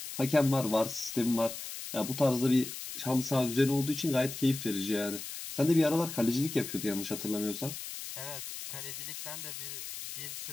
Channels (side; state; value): left; noise; hiss, 8 dB below the sound